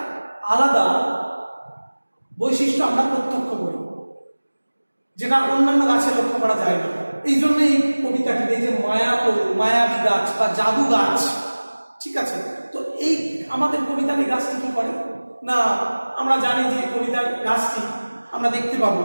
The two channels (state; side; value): inverted; both; correlation -1.00